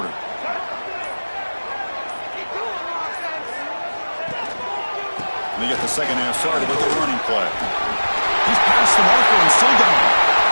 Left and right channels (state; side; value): inverted; both; correlation -1.00